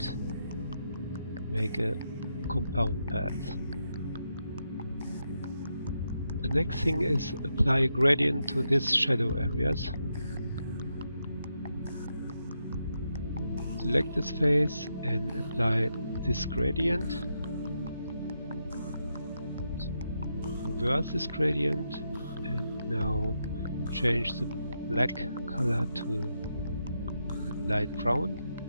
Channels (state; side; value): inverted; both; correlation -0.83